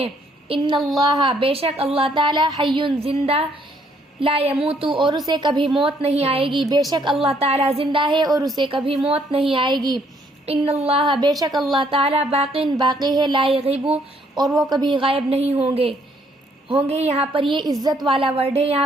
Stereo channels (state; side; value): normal; both; correlation 0.67